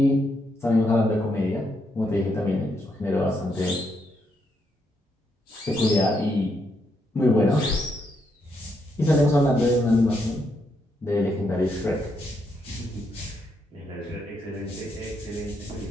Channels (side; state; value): both; normal; correlation 0.78